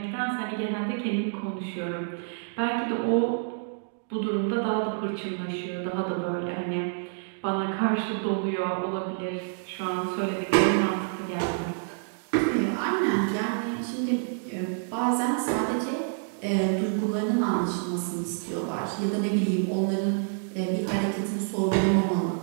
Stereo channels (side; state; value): left; silent; digital silence